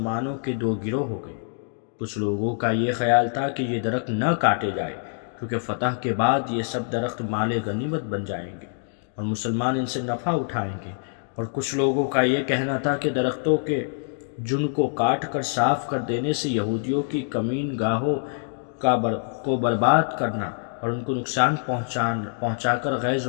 کے 2 گروہ ہو گئے۔ کچھ لوگوں کا یہ خیال تھا کہ یہ درخت نہ کاٹے جائے کیونکہ فتح کے بعد یہ سب درخت مال غنیمت بن جائیں گے اور مسلمان ان سے نفع اٹھائیں گے، اور کچھ لوگوں کا یہ کہنا تھا کہ درختوں کے جن کو کاٹ کر صاف کر دینے سے یہودیوں کی کمین گاہوں کو برباد کرنا اور ان کو نقصان پہنچا کر غیظ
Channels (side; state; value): right; silent; digital silence